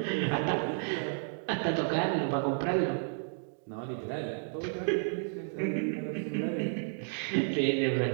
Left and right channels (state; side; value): silent; left; digital silence